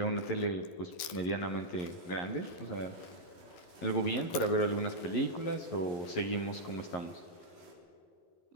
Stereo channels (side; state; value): right; late; 12 ms